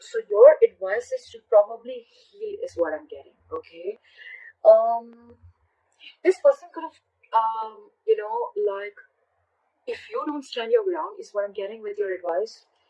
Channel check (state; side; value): identical; both; correlation 1.00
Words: So your advice is to probably heal is what I'm getting, okay? This person could have, like, if you don't stand your ground is what I'm getting with your advice.